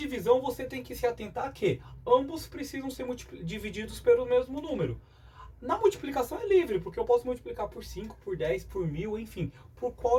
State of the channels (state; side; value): identical; both; correlation 1.00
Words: você tem que se atentar que ambos precisam ser divididos pelo mesmo número. Na multiplicação é livre, porque eu posso multiplicar por 5, por 10, por 1000, enfim, por